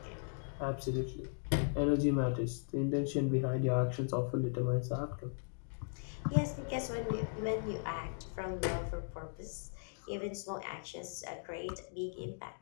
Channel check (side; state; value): right; silent; digital silence